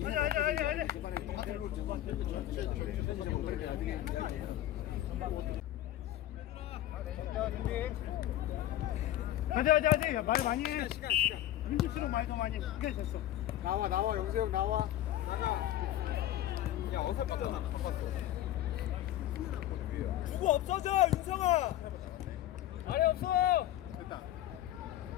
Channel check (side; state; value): right; quieter; 13.3 dB